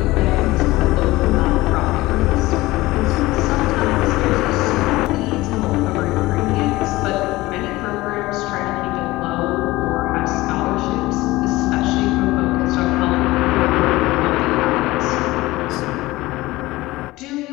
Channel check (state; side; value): quieter; right; 19.1 dB